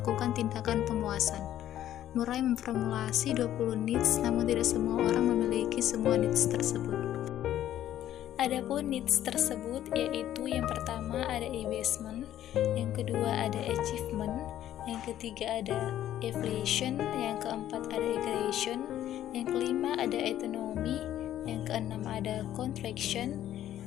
tindakan pemuasan. Murray memformulasi 20 needs, namun tidak semua orang memiliki semua needs tersebut. Adapun needs tersebut yaitu yang pertama ada abasement, yang kedua ada achievement, yang ketiga ada affiliation, yang keempat ada aggression, yang kelima ada autonomy, yang keenam ada contraction,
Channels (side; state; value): right; quieter; 12.1 dB